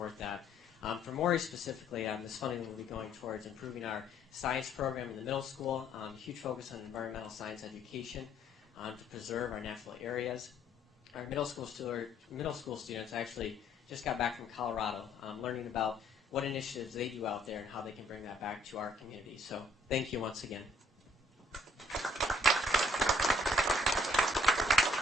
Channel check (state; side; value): normal; both; correlation 0.63